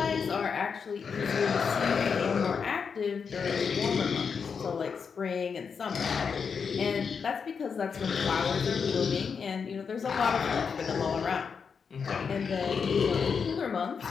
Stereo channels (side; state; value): right; quieter; 6.0 dB